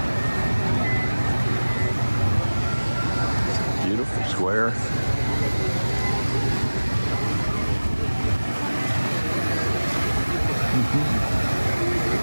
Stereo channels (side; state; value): both; inverted; correlation -1.00